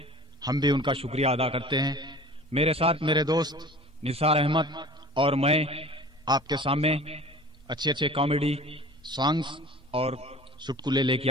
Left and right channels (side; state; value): both; normal; correlation 0.43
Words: हम भी उनका शुक्रिया अदा करते हैं। मेरे साथ मेरे दोस्त निसार अहमद और मैं आपके सामने अच्छे अच्छे कॉमेडी सॉन्ग्स और चुटकुले लेके